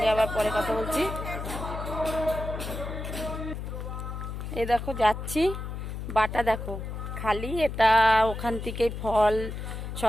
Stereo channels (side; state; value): left; noise; hum, 6 dB below the sound